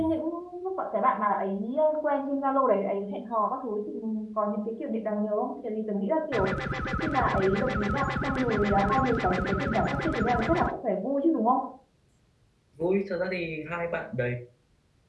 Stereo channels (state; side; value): identical; both; correlation 1.00